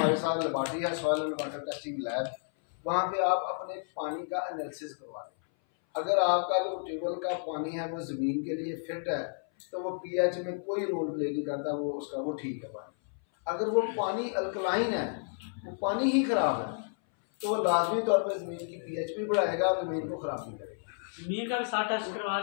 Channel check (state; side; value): silent; right; 57 dB below the other